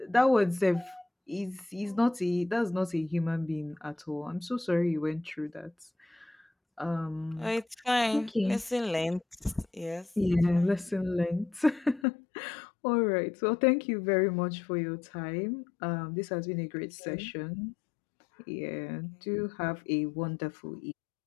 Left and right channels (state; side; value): drops out; right; at 12.1 s